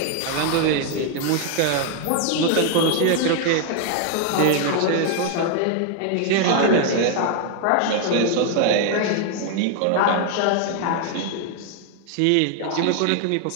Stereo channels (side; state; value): both; different; correlation 0.00